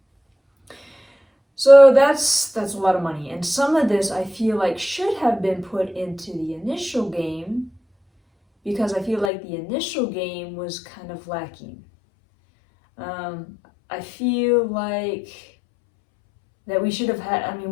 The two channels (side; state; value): right; drops out; at 9.3 s